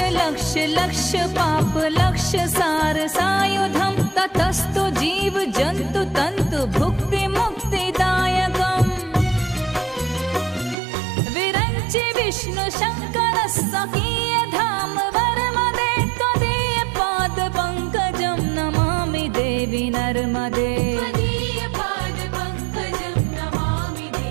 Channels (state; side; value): drops out; left; at 10.8 s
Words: लक्ष लक्ष पाप लक्ष सार सायुधम ततस्तु जीव जंतु तंतु भुक्ति मुक्तिदायकम् विरंचि विष्णु शंकर सकीय धाम वर्मदे त्वदीय पाद पंकजं नमामि देवी नर्मदे